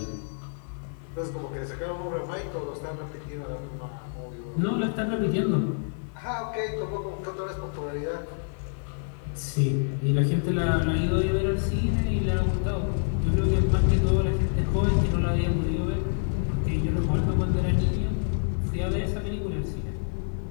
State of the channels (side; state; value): right; silent; 55 dB below the other